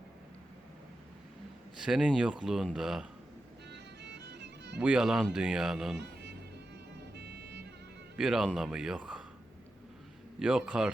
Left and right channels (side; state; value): both; normal; correlation 0.90